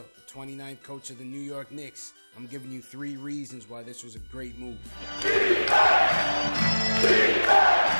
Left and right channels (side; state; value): both; inverted; correlation -1.00